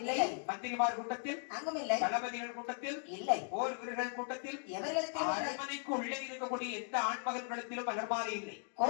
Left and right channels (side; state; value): right; silent; 53 dB below the other